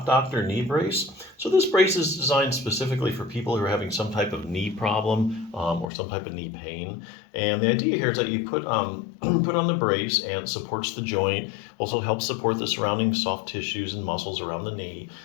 Doctor knee brace. So this brace is designed specifically for people who are having some type of knee problem or some type of knee pain. And the idea here is that you put put on the brace and it supports the joint, also helps support the surrounding soft tissues and muscles around the knee.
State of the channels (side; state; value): right; drops out; at 5.9 s